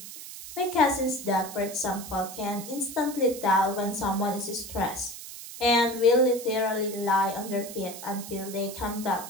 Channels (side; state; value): right; noise; hiss, 12 dB below the sound